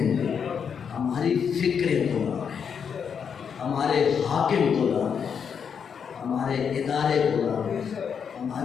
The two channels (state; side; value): quieter; right; 7.0 dB